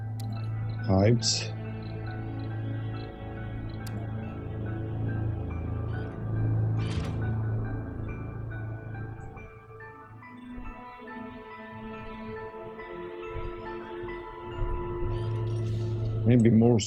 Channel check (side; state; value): both; identical; correlation 1.00